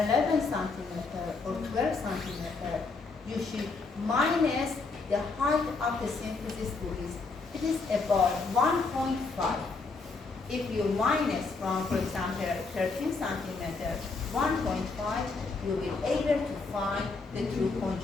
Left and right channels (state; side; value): quieter; right; 4.1 dB